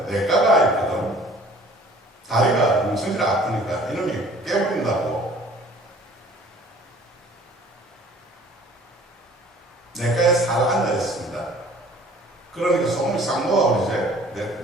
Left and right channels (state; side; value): normal; both; correlation 0.51